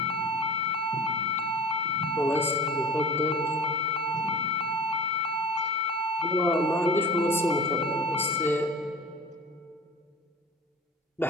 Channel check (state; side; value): normal; both; correlation 0.38